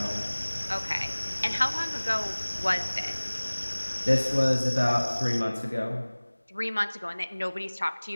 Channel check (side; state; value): both; inverted; correlation -1.00